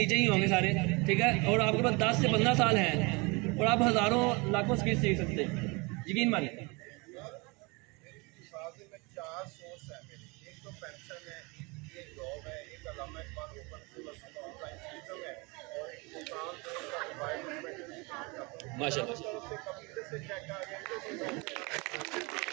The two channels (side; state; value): left; quieter; 27.7 dB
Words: ही होंगे सारे, ठीक है, और आपके पास 10 से 15 साल हैं, और आप हज़ारों लाखों स्किल सीख सकते हैं, यकीन मानिए। माशाल्लाह